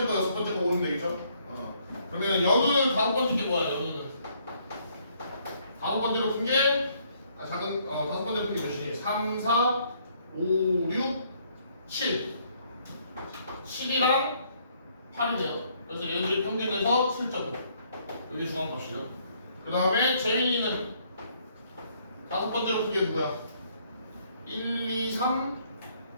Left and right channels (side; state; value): both; inverted; correlation -0.67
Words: 거, 6번째 거 고르면 되겠죠? 그러면 연우는 5번째 게 뭐야? 연우는 5번째로 푼 게 작은 5번째로 푼 게 몇이니? 3, 4, 5, 6, 7 7이랑 8이네요. 그래서 얘들이 평균에서 7.5 여기 중앙값이죠. 그 다음에 재민이는 5번째로 푼 게 누구야? 1, 2, 3,